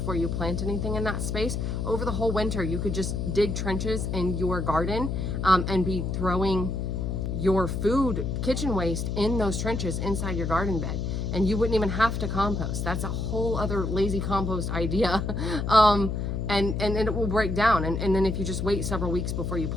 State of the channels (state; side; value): noise; left; hum, 2 dB below the sound